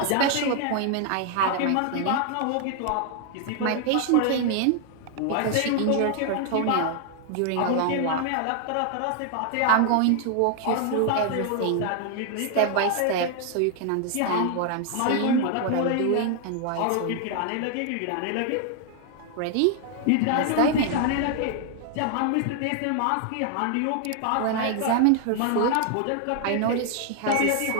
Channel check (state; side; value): different; both; correlation 0.00